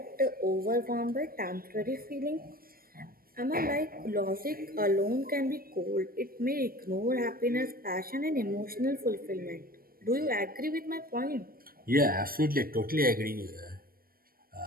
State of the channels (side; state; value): left; late; 0.43 ms